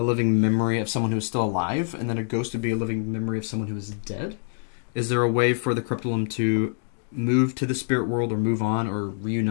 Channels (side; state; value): right; silent; digital silence